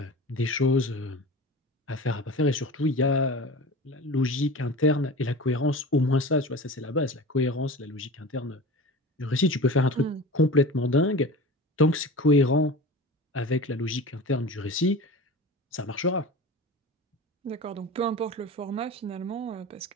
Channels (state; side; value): normal; both; correlation 0.34